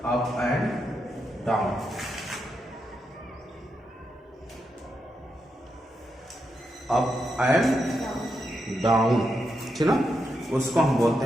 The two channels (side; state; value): both; normal; correlation 0.84